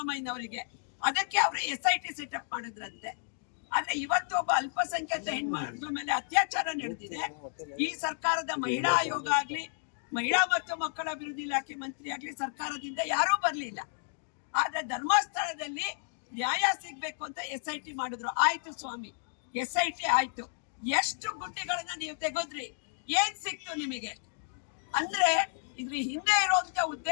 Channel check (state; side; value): silent; right; digital silence